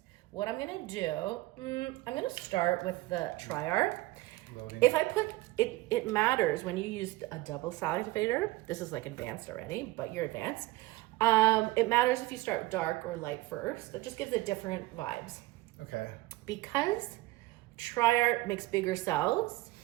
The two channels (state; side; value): quieter; left; 19.0 dB